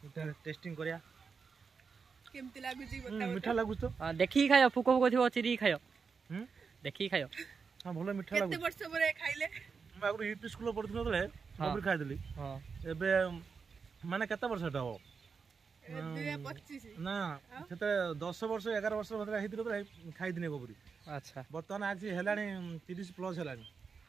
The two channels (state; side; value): quieter; left; 5.4 dB